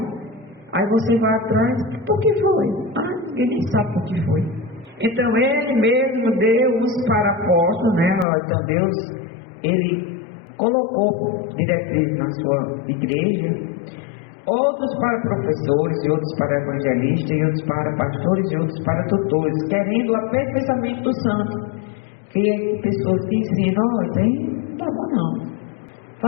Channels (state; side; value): drops out; right; at 8.2 s